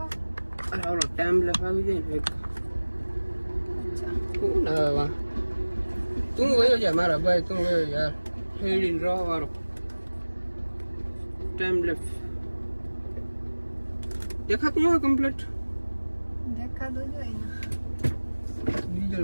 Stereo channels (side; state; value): both; inverted; correlation -1.00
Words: ઓલો ટાઈમ લખાવી જાય ને કોણ આવે તું વયો જા મારા ભાઈ તું વયો યાર હેડીને રહો વાળો ટાઈમ લેફ્ટ દેખાતું હોય કમ્પ્લીટ દેખાતું જોઈએ ને